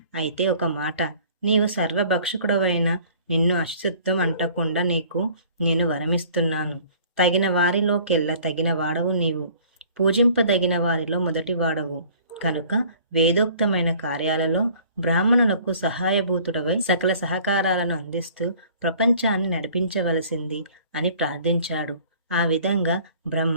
అయితే ఒక మాట, నీవు సర్వభక్షకుడవైన నిన్ను అశుద్ధం అంటకుండా నీకు నేను వరమిస్తున్నాను. తగిన వారిలోకెల్లా తగిన వాడవు నీవు. పూజింపదగిన వారిలో మొదటి వాడవు కనుక వేదోక్తమైన కార్యాలలో బ్రాహ్మణులకు సహాయభూతుడవై సకల సహకారాలను అందిస్తూ ప్రపంచాన్ని నడిపించవలసింది అని ప్రార్థించాడు. ఆ విధంగా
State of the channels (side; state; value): both; inverted; correlation -0.53